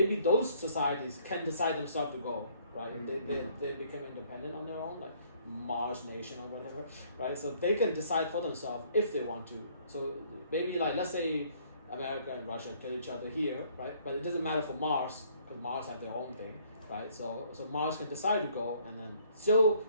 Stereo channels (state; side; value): inverted; both; correlation -0.61